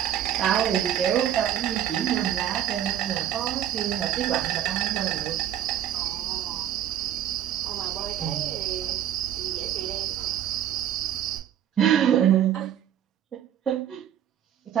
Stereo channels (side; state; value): left; quieter; 10.5 dB